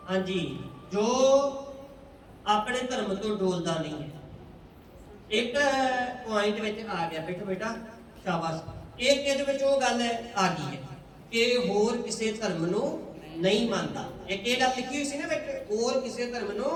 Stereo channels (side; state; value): both; identical; correlation 1.00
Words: ਹਾਂਜੀ, ਜੋ ਆਪਣੇ ਧਰਮ ਤੋਂ ਡੋਲਦਾ ਨਹੀਂ ਹੈ। ਇੱਕ ਪੁਆਇੰਟ ਵਿੱਚ ਆ ਗਿਆ, ਬੈਠੋ ਬੇਟਾ, ਸ਼ਾਬਾਸ਼। ਇੱਕ ਇਹਦੇ ਵਿੱਚ ਉਹ ਗੱਲ ਆ ਗਈ ਹੈ ਕਿ ਹੋਰ ਕਿਸੇ ਧਰਮ ਨੂੰ ਨਹੀਂ ਮੰਨਦਾ। ਇੱਕ ਇਹ ਗੱਲ ਲਿਖੀ ਹੋਈ ਸੀ ਨਾ ਵਿੱਚ, ਹੋਰ ਕਿਸੇ ਧਰਮ ਨੂੰ